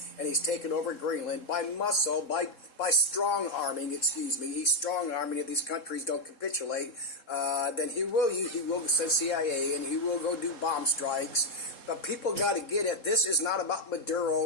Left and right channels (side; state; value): right; late; 4.2 ms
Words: and he's taken over Greenland by muscle, by strong arming, He's strong arming. If these countries don't capitulate, then he will send CIA, and he will go do bomb strikes. But people got to get it. This is not about